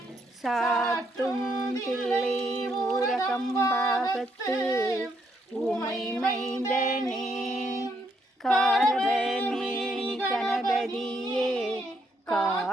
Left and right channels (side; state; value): both; normal; correlation 0.74